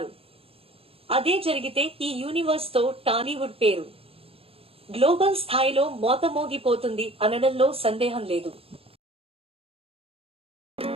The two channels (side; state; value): left; late; 0.28 ms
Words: అదే జరిగితే ఈ యూనివర్స్ తో టాలీవుడ్ పేరు గ్లోబల్ స్థాయిలో మోతమోగిపోతుంది అనడంలో సందేహం లేదు.